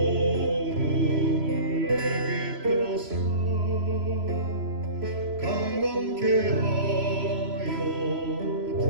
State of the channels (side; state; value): left; late; 3.0 ms